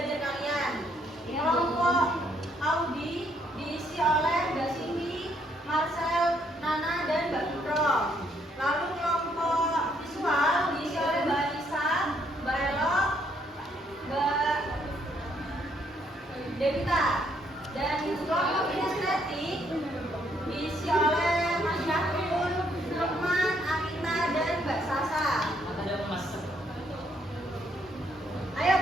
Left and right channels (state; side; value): normal; both; correlation 0.70